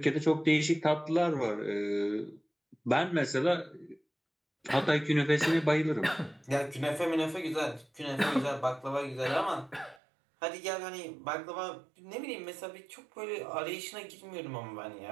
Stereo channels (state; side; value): drops out; left; at 10.0 s